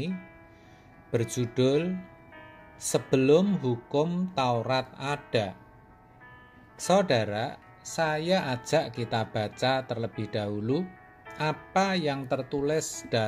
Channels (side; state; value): both; identical; correlation 1.00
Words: berjudul Sebelum Hukum Taurat Ada. Saudara, saya ajak kita baca terlebih dahulu apa yang tertulis